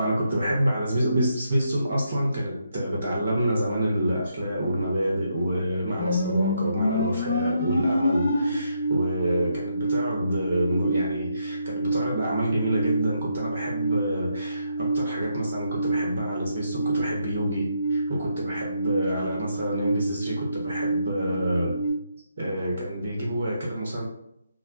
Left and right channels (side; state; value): both; inverted; correlation -0.78